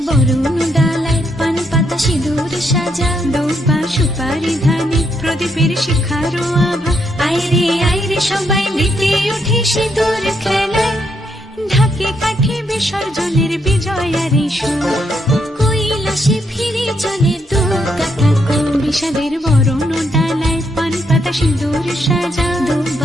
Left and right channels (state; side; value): normal; both; correlation 0.77